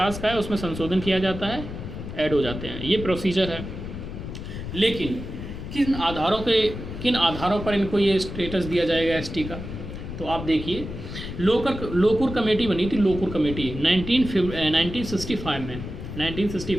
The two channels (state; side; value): noise; left; rumble, 8 dB below the sound